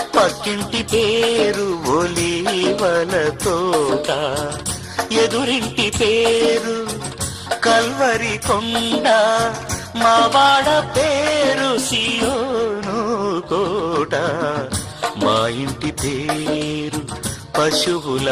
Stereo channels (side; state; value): both; identical; correlation 1.00